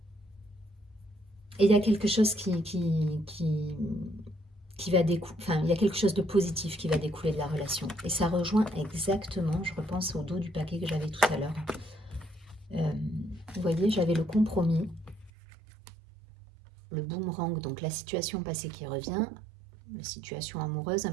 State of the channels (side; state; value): left; drops out; at 15.3 s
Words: Et il y a quelque chose qui va découler, enfin, il y a quelque chose de positif qui va découler de la relation. Et ça rejoint exactement, je repense au dos du paquet que j'avais tout à l'heure. Vous voyez, j'avais le compromis, le boomerang, donc la situation passée qui revient, la situation amoureuse, à